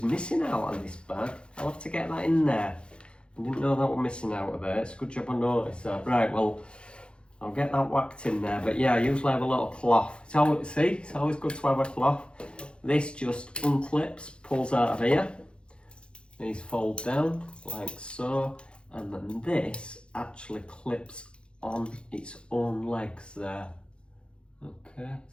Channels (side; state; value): right; late; 0.055 ms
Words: missing out on this bag. I'll have to get that in there. I didn't know that was missing out of there. It's a good job I noticed that. Right, well, I'll get that whacked in there. But yeah, I usually have a little cloth. It's always good to have a cloth. This just unclips, pulls out of here. These fold down like so. And then this actually clips on its own legs there. Okay,